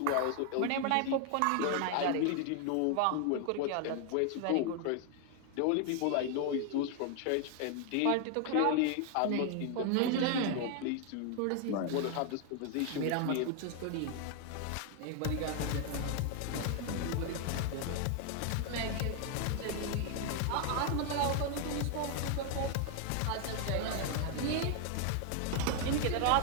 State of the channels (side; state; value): both; different; correlation 0.00